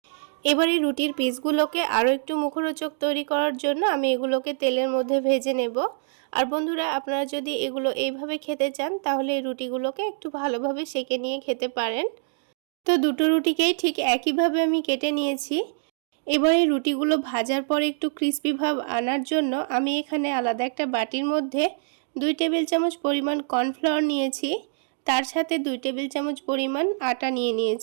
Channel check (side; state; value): left; silent; digital silence